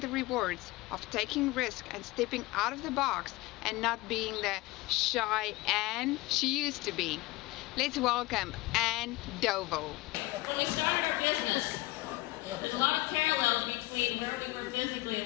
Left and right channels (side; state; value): right; quieter; 20.3 dB